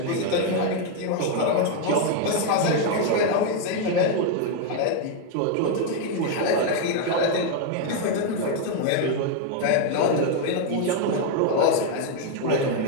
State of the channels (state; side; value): different; both; correlation 0.01